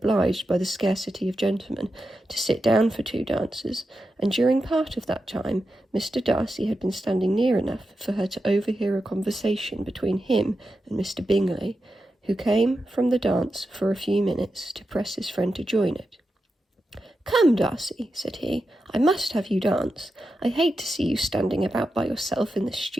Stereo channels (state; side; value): normal; both; correlation 0.89